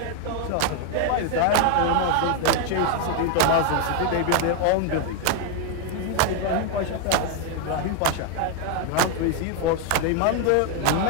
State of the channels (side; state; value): both; different; correlation 0.00